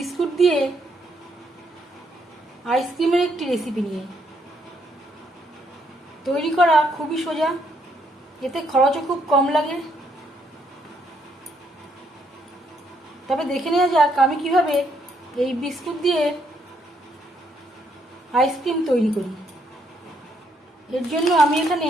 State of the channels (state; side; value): normal; both; correlation 0.72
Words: দিয়ে আইসক্রিমের একটি রেসিপি নিয়ে। তৈরি করা খুবই সোজা, এতে খরচও খুব কম লাগে। তবে দেখে নেওয়া যাক আমি কিভাবে এই বিস্কুট দিয়ে আইসক্রিম তৈরি করি। এর জন্য আমি এখানে